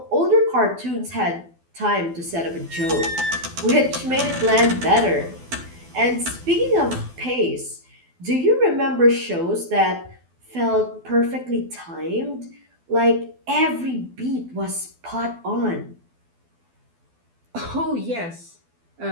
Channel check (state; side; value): late; left; 12 ms